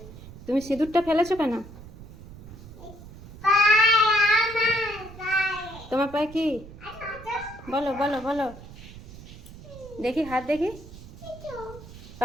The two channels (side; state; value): right; noise; rumble, 16 dB below the sound